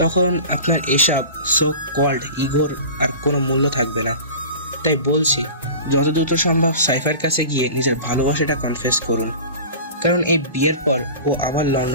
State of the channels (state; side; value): inverted; both; correlation -0.37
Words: তখন আপনার এসব সো কল্ড ইগোর আর কোনো মূল্য থাকবে না। তাই বলছি, যত দ্রুত সম্ভব সাইফার কাছে গিয়ে নিজের ভালোবাসাটা কনফেস করুন, কারণ এই বিয়ের পর ও আবার